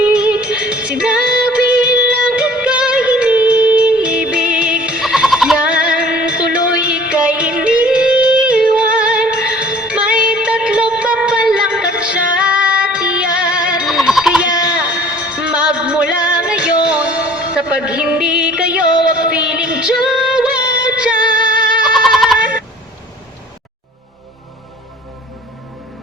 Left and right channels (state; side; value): normal; both; correlation 0.50